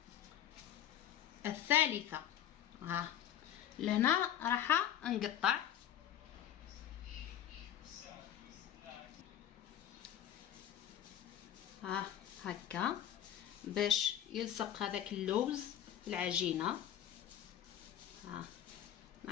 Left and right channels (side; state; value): right; quieter; 10.7 dB